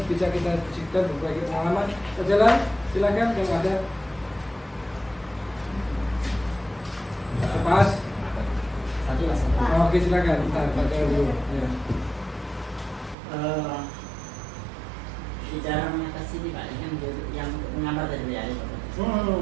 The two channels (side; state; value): left; drops out; at 13.2 s